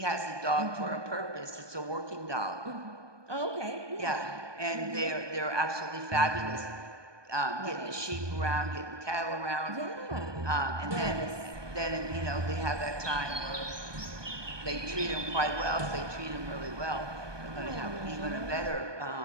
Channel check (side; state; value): left; late; 1.2 ms